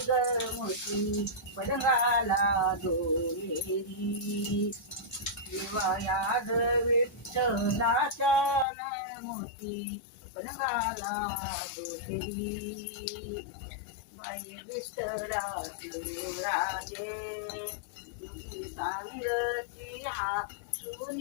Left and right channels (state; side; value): drops out; right; at 8.7 s